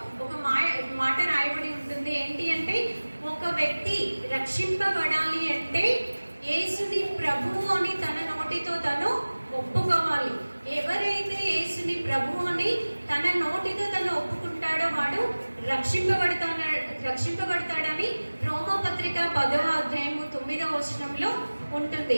ఒక మాట రాయబడి ఉంటుంది. ఏంటి అంటే ఒక వ్యక్తి రక్షింపబడాలి అంటే యేసుని ప్రభువు అని తన నోటితో తను ఒప్పుకోవాలి. ఎవరైతే యేసుని ప్రభువు అని తన నోటితో తను ఒప్పుకుంటాడో వాడు రక్షింపబడతాడని రోమా పత్రిక 10వ అధ్యాయము 9వ వచనంలో ఉంటుంది.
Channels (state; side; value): inverted; both; correlation -1.00